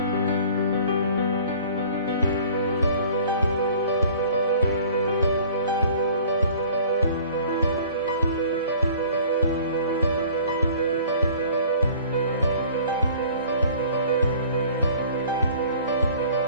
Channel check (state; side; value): inverted; both; correlation -0.50